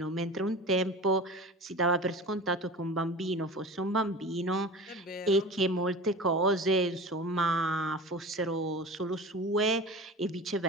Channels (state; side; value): normal; both; correlation 0.35